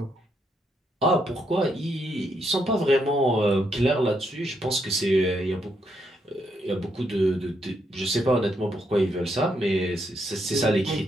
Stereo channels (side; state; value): both; normal; correlation 0.77